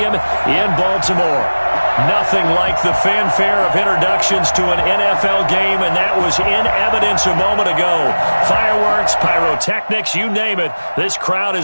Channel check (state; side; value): inverted; both; correlation -1.00